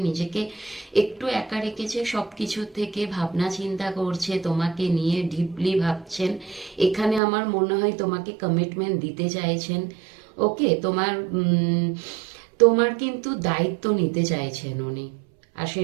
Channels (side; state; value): left; drops out; at 7.2 s